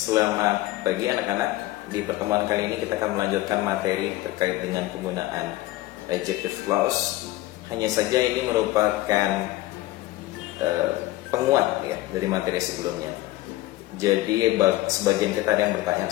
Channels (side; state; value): right; quieter; 17.5 dB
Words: pagi anak-anak. Di pertemuan kali ini kita akan melanjutkan materi terkait dengan penggunaan adjective clause. Hanya saja ini merupakan penguat ya dari materi sebelumnya. Jadi sebagian kita ada yang bertanya